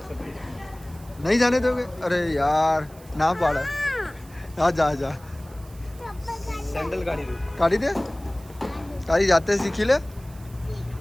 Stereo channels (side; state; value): right; noise; hiss, 24 dB below the sound